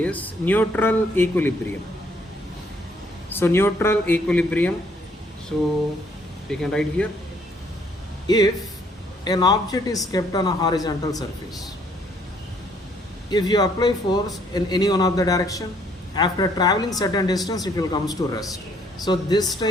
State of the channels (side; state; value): both; normal; correlation 0.66